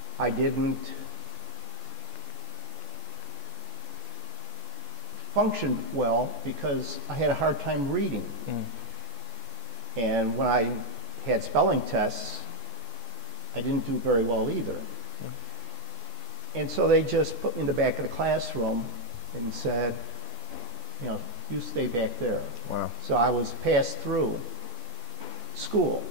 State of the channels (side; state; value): left; late; 14 ms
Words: I didn't function well because I had a hard time reading. And when I had spelling tests, I didn't do very well either. And so they just put me in the back of the classroom and said, you know, you stay back there. Wow. So I was passed through school,